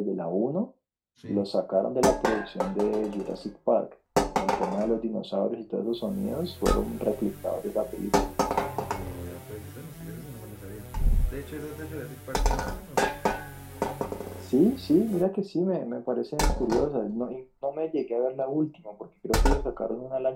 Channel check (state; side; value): identical; both; correlation 1.00